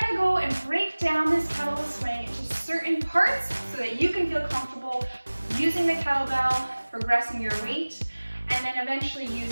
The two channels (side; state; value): both; inverted; correlation -1.00